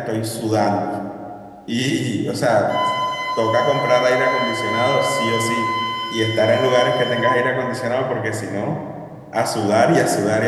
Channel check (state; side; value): identical; both; correlation 1.00